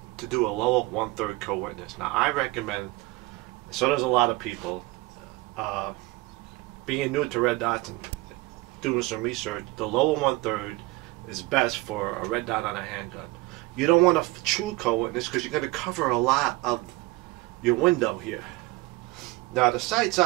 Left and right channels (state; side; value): quieter; left; 21.6 dB